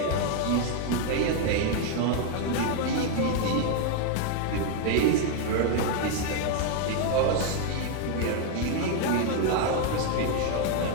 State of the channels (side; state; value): both; different; correlation 0.01